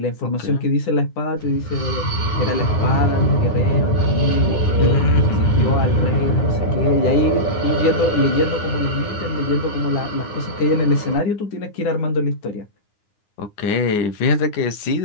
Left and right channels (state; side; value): late; right; 9.7 ms